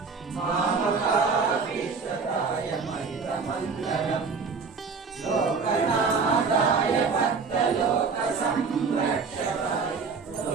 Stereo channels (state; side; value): quieter; left; 5.0 dB